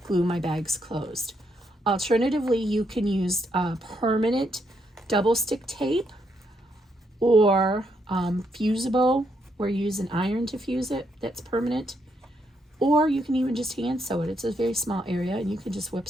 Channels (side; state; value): both; normal; correlation 0.77